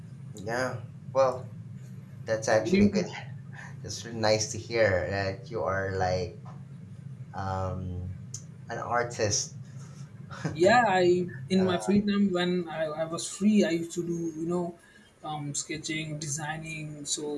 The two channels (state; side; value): identical; both; correlation 1.00